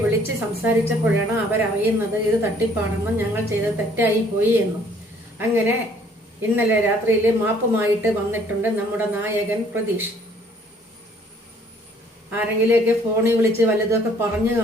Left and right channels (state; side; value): normal; both; correlation 0.60